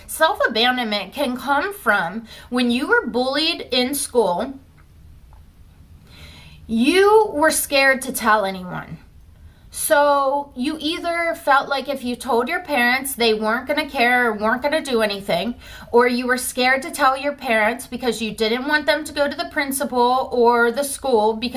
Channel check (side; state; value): both; identical; correlation 1.00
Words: self-abandonment can come from when you were bullied in school, you were scared to tell anyone. So you either felt like if you told your parents, they weren't going to care or weren't going to do anything, or you were scared to tell your parents because you didn't want them to go to the principal or the school